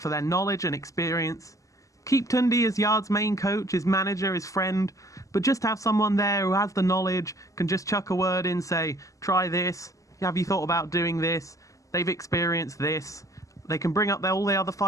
their knowledge and experience. Keep Tunde as Yarde's main coach, his manager, his friend, but just have someone there who has the knowledge, can just chuck a word in, say, try this, have you thought about doing this, they've experienced this. They can bring up all the other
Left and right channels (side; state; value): right; late; 0.16 ms